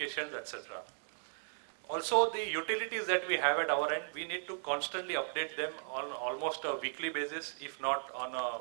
etc. Also, the utilities that we have at our end, we need to constantly update them on almost a weekly basis, if not on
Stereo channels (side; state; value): left; silent; 54 dB below the other